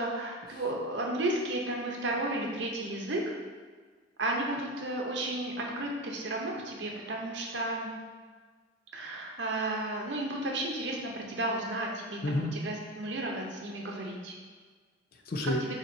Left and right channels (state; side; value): normal; both; correlation 0.22